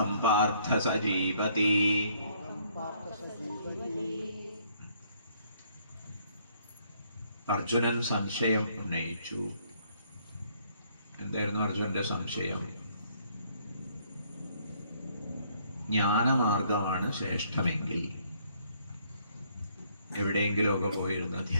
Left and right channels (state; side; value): inverted; both; correlation -0.66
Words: പാർത്ഥ സജീവതി. അർജുനൻ സംശയം ഉന്നയിച്ചു. എന്തായിരുന്നു അർജുനന്റെ സംശയം? ജ്ഞാനമാർഗമാണ് ശ്രേഷ്ഠമെങ്കിൽ, എവിടെയെങ്കിലുമൊക്കെ പോയിരുന്ന്